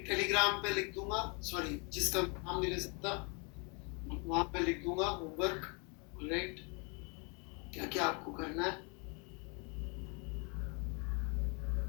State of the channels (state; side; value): quieter; right; 33.2 dB